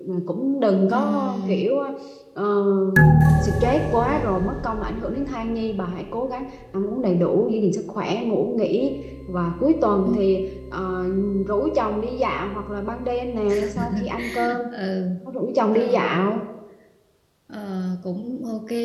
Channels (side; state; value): both; identical; correlation 1.00